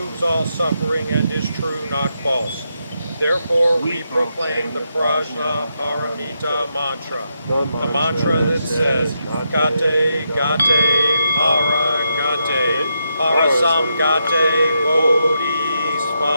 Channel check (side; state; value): both; inverted; correlation -0.83